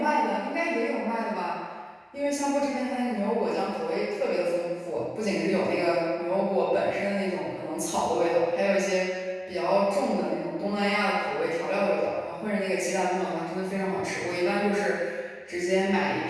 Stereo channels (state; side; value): identical; both; correlation 1.00